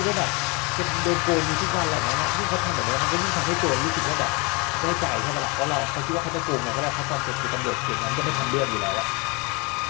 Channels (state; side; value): quieter; right; 28.9 dB